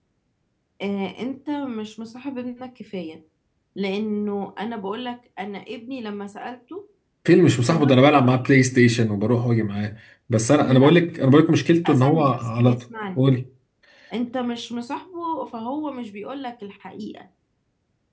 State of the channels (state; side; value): identical; both; correlation 1.00